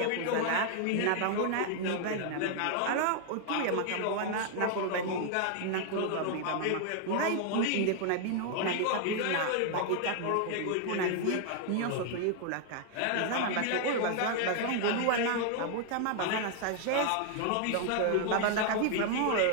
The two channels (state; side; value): different; both; correlation 0.00